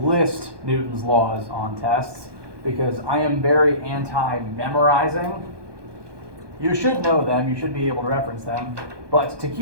list Newton's laws on tests, because I am very anti-memorizing. You should know them, you should be able to reference them, but to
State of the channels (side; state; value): left; late; 1.2 ms